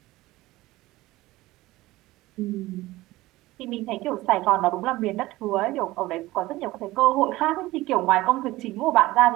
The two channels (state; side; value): quieter; left; 18.3 dB